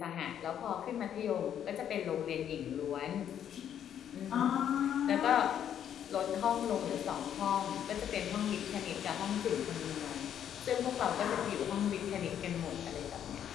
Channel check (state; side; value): quieter; right; 9.6 dB